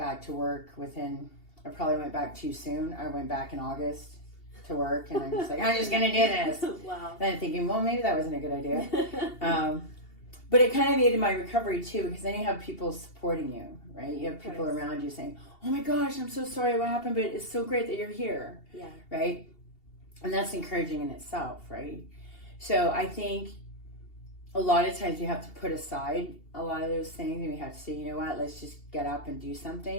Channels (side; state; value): right; late; 2.8 ms